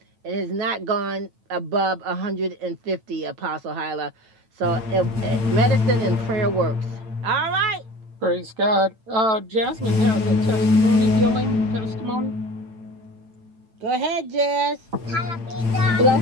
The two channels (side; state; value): left; late; 9.1 ms